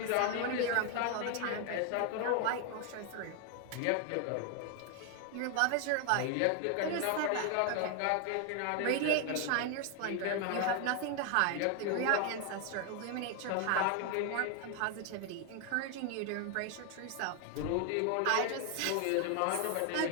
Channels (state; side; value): different; both; correlation 0.01